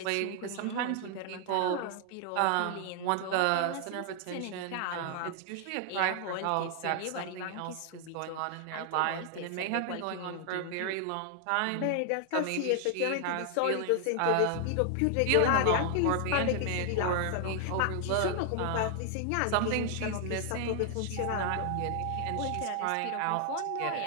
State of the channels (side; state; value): both; different; correlation 0.00